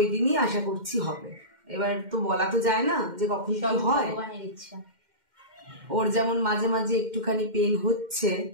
দিনই আশা করছি হবে। এবার তো বলা তো যায় না যে কখন কি হয়, ভগবানের ইচ্ছা। ওর যেমন মাঝে মাঝে একটুখানি পেন হচ্ছে,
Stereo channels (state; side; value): late; left; 2.1 ms